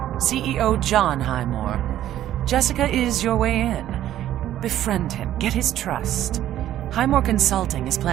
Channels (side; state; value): left; quieter; 12.4 dB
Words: CEO John Highmore. Jessica is your way in. Befriend him, get his trust. Highmore Consulting is